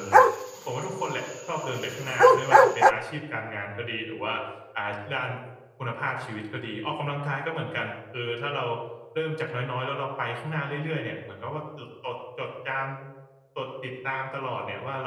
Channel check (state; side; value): identical; both; correlation 1.00